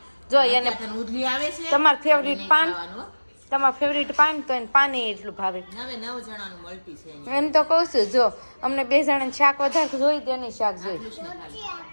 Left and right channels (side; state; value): both; inverted; correlation -1.00